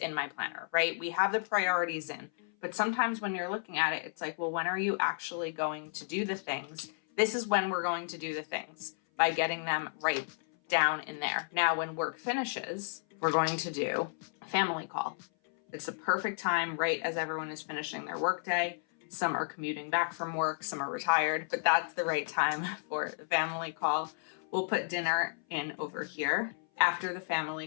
my planner, right? We have the priorities in, but sometimes when you're looking at it, it's like, well, when are you actually going to do the things? This is when we're going to do the things, by getting them right down in there. Now, when work finishes, we're going to do a family call. It's the perfect time, right as everyone is finishing their workday. Some are commuting back from work, some are retired, but that's the right time for the family call. We'll put dinner in over here. After the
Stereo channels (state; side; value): silent; right; 56 dB below the other